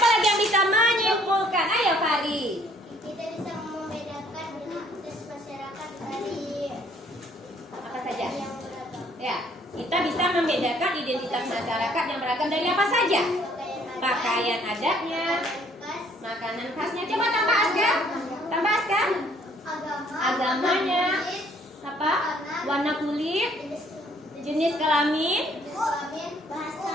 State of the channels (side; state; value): both; normal; correlation 0.62